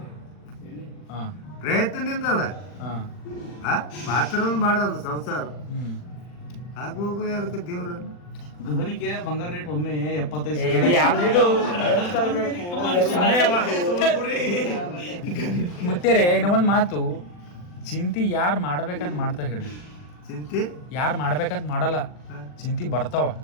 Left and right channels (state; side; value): late; right; 40 ms